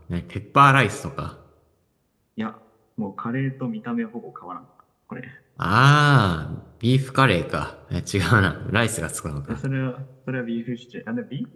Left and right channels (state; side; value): identical; both; correlation 1.00